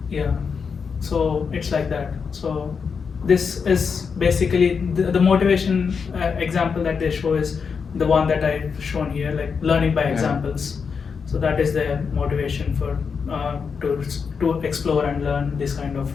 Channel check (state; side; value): quieter; right; 5.8 dB